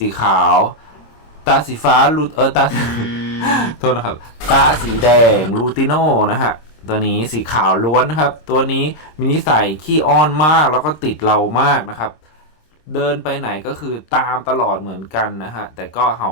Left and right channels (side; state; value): right; late; 26 ms